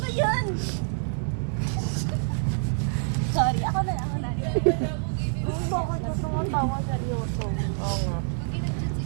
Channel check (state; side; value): silent; left; digital silence